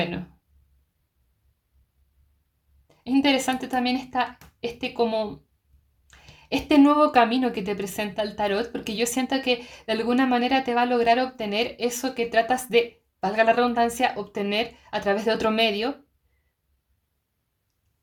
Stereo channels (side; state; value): both; identical; correlation 1.00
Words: es interesante también este como este nuevo camino que te presenta el tarot, porque yo siento que de alguna manera te va a lograr obtener eso que tratas de, valga la redundancia, obtener a través de otro medio,